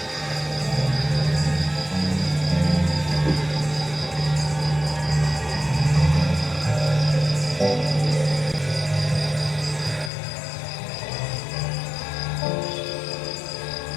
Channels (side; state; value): right; drops out; at 10.1 s